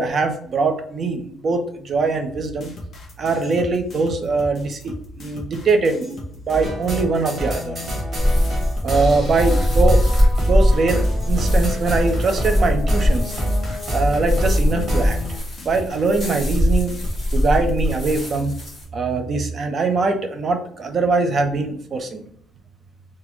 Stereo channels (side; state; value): both; normal; correlation 0.82